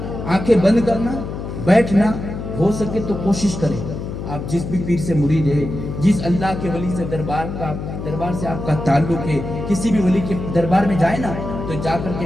آنکھیں بند کرنا، بیٹھنا، ہو سکے تو کوشش کریں آپ جس بھی پیر سے مرید ہے، جس اللہ کے ولی سے دربار سے آپ کا تعلق ہے، کسی بھی ولی کے دربار میں جائے نا تو جا کر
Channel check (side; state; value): left; noise; hum, 7 dB below the sound